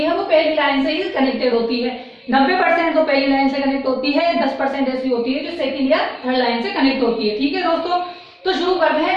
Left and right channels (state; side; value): identical; both; correlation 1.00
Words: वो पहली लाइन से ही कनेक्टेड होती है। 90% तो पहली लाइन से कनेक्ट होती है, 10% ऐसी होती है जो सेकंड या थर्ड लाइन से कनेक्ट होती है। ठीक है दोस्तों, तो शुरू करते हैं